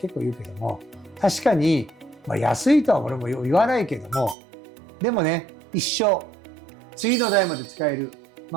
構言うけども、確かに、安いとは俺も言わないけども、でもね一生次の代まで使える、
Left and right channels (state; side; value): drops out; left; at 4.4 s